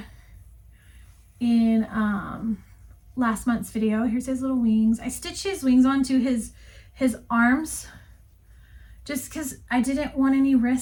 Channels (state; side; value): identical; both; correlation 1.00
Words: in last month's video. Here's his little wings. I stitched his wings onto his arms just because I didn't want any